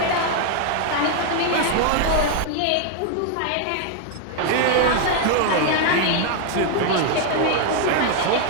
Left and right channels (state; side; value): different; both; correlation 0.00